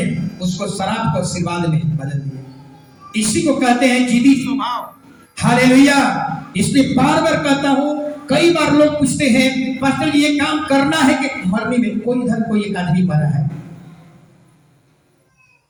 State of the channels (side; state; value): both; identical; correlation 1.00